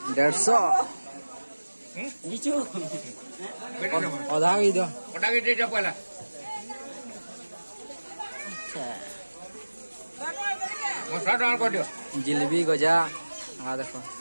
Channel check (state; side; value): inverted; both; correlation -1.00